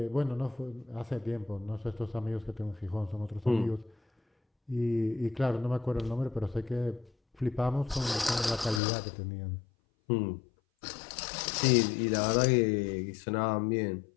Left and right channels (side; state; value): right; drops out; at 8.8 s